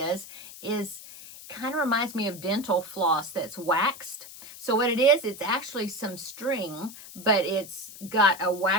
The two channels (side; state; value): left; noise; hiss, 15 dB below the sound